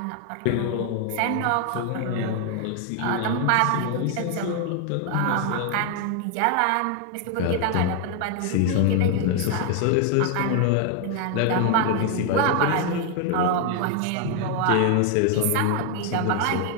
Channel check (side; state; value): both; different; correlation 0.01